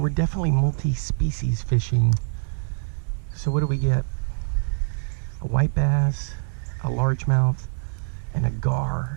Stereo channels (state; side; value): silent; left; digital silence